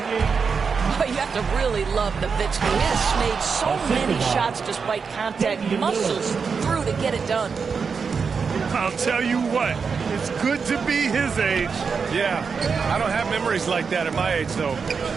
you have to really love Nowitzki. He has made so many shots despite contact. Muscles through to get it done. I'll tell you what, it's good to be his age. Yeah, I don't have memories like that at my age, though.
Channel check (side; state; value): left; quieter; 5.6 dB